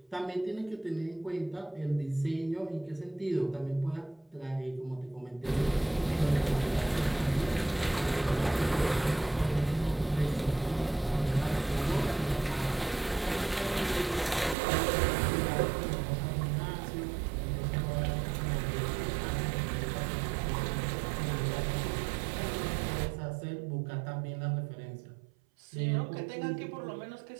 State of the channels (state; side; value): drops out; left; at 14.6 s